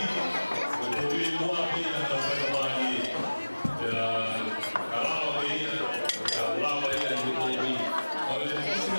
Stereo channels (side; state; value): both; inverted; correlation -1.00